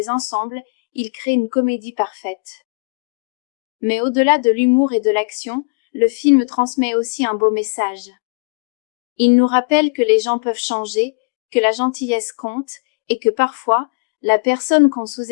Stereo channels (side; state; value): right; quieter; 36.2 dB